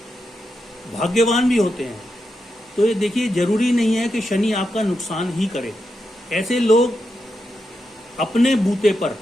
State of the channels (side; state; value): both; normal; correlation 0.86